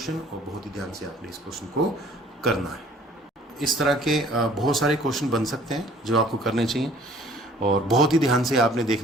और बहुत ही ध्यान से आपने इस क्वेश्चन को करना है। इस तरह के बहुत सारे क्वेश्चन बन सकते हैं जो आपको करने चाहिए, और बहुत ही ध्यान से आपने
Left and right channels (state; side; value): normal; both; correlation 0.54